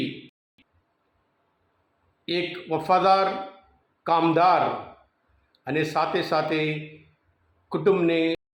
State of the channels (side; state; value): both; identical; correlation 1.00